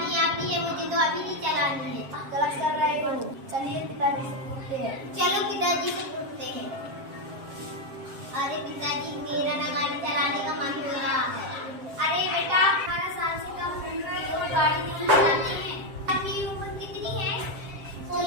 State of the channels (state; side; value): late; left; 7.4 ms